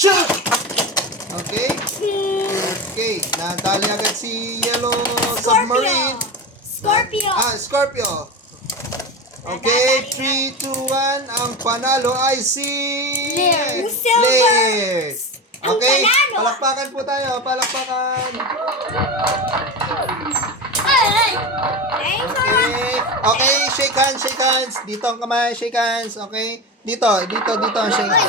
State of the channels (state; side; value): normal; both; correlation 0.23